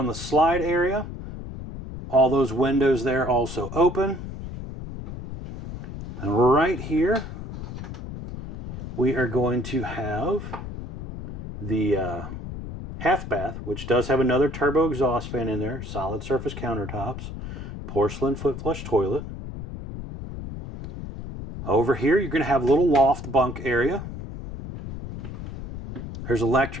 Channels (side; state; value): left; noise; rumble, 9 dB below the sound